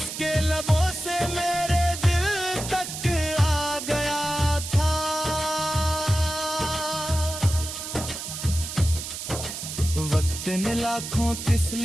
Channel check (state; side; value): noise; right; hiss, 7 dB below the sound